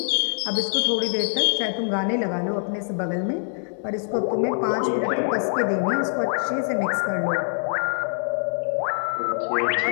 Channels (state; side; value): silent; right; digital silence